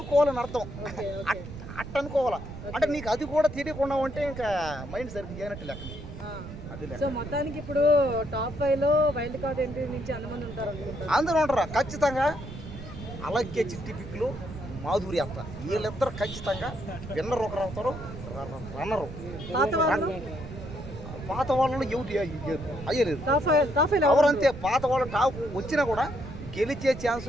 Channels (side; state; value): right; noise; rumble, 11 dB below the sound